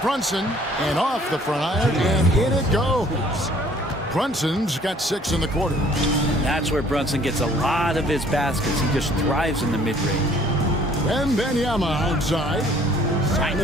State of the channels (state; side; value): normal; both; correlation 0.57